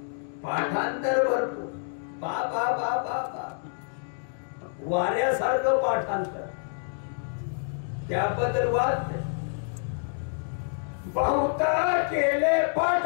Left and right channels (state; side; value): silent; right; digital silence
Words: पाठांतर भरपूर बा बा बा बा बा वाऱ्यासारखं पाठांतर त्याबद्दल वाद बहुत केले